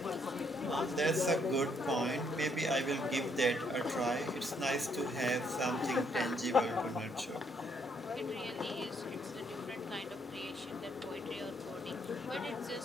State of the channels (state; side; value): normal; both; correlation 0.71